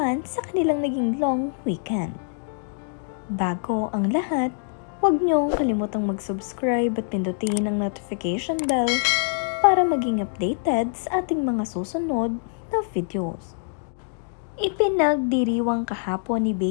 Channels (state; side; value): silent; right; digital silence